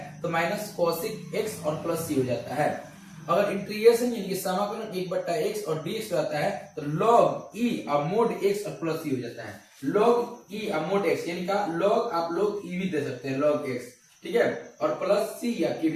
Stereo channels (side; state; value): both; identical; correlation 1.00